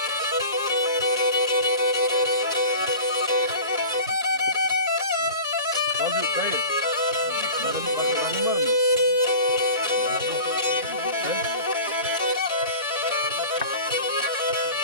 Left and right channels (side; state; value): both; inverted; correlation -0.37